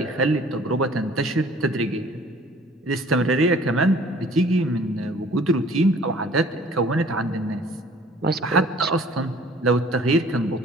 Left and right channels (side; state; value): both; normal; correlation 0.52